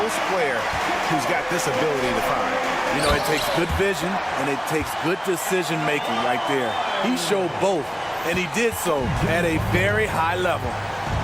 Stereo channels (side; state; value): both; identical; correlation 1.00